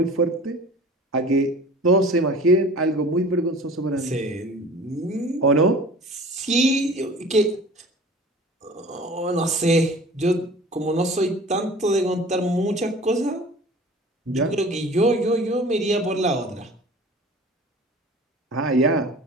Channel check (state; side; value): normal; both; correlation 0.43